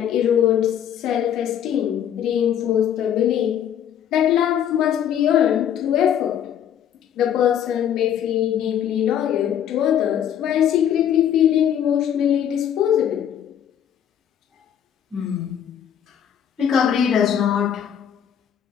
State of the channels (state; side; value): quieter; right; 9.5 dB